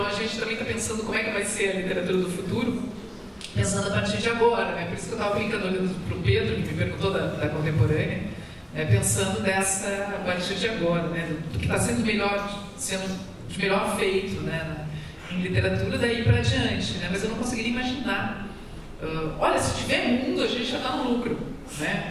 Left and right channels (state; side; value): identical; both; correlation 1.00